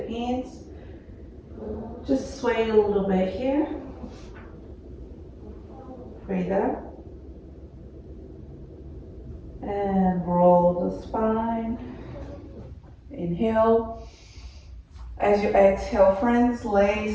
hands. Just sway a little bit here. Breathe out. And roll the spine. Inhale. As you exhale, friends,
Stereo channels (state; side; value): identical; both; correlation 1.00